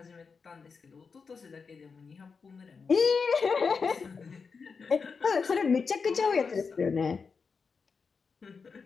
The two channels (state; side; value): quieter; right; 5.2 dB